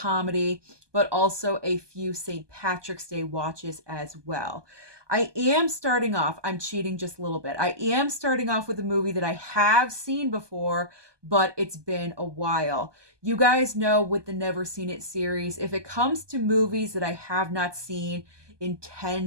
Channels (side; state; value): left; late; 1.2 ms